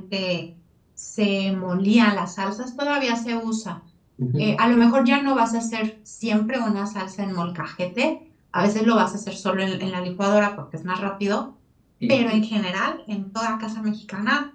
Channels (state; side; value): identical; both; correlation 1.00